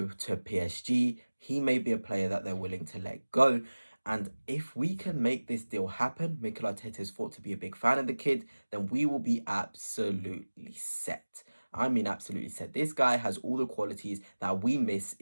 to PSG, he may be a player that they're willing to let go. And if we can make this deal happen, Mikel Arteta is thought to be a big fan of the kid, then we will be absolutely set. I mean, absolutely set. This guy has all the qualities that we miss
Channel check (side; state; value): both; inverted; correlation -1.00